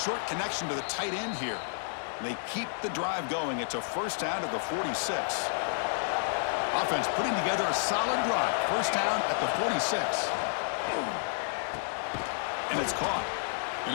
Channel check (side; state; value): right; silent; digital silence